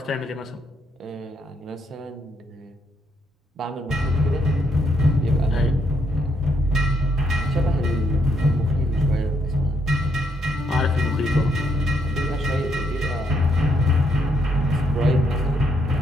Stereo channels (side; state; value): both; normal; correlation 0.74